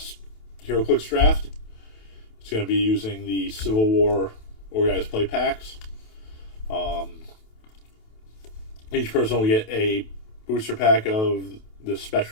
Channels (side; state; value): right; late; 28 ms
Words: draft. It's going to be using the Civil War organized play packs. Each person will get a booster pack of the